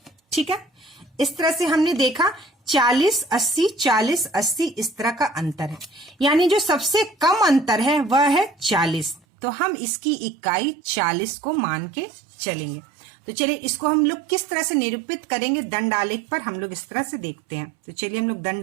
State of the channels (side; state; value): left; drops out; at 9.2 s